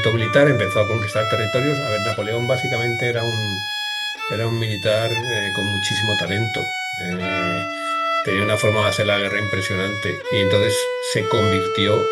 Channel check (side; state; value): both; identical; correlation 1.00